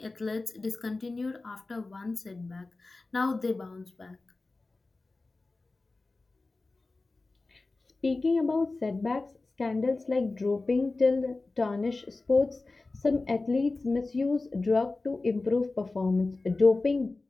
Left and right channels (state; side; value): quieter; right; 3.4 dB